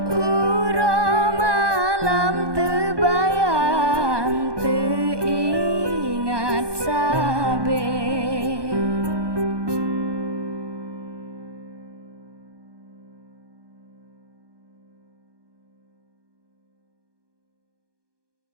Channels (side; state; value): left; late; 1.2 ms